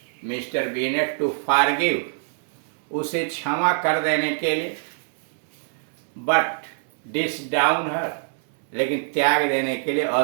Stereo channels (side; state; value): left; silent; 61 dB below the other